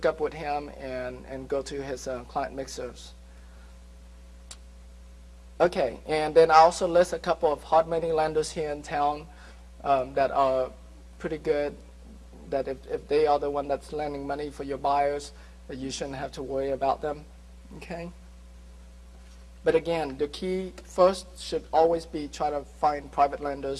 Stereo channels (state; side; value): identical; both; correlation 1.00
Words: up with him and go to his client mixers. Okay, and then I also list a couple of hard money lenders here in town that are pretty good, that if they are the one that's lending money for your buyers, that you shouldn't have to worry about them, okay? But again, the key first should always be try to find private